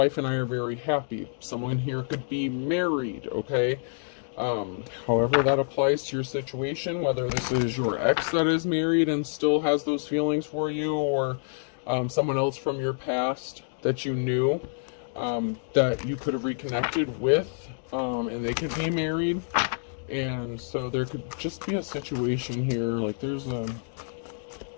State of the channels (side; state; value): right; silent; digital silence